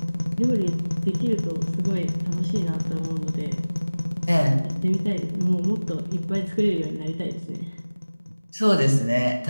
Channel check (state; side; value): inverted; both; correlation -0.99